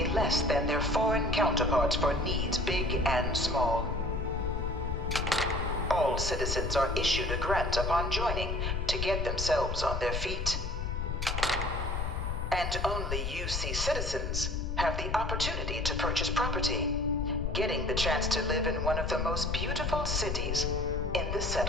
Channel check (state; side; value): noise; left; rumble, 2 dB below the sound